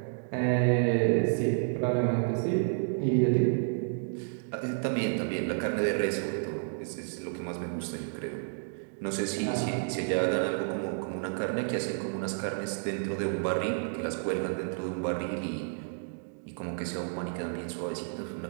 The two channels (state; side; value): silent; left; digital silence